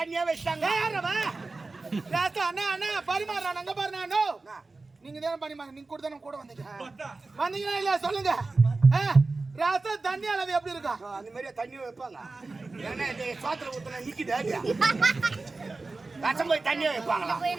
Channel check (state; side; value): quieter; left; 3.6 dB